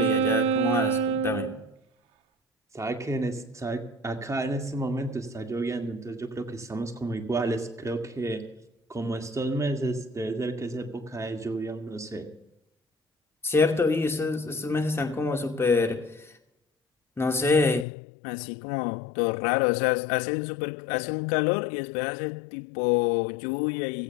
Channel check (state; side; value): drops out; right; at 17.9 s